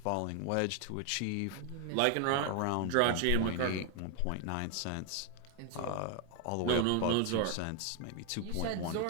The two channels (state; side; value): different; both; correlation 0.00